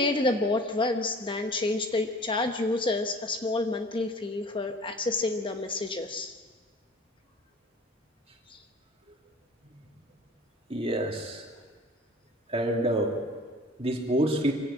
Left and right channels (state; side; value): normal; both; correlation 0.45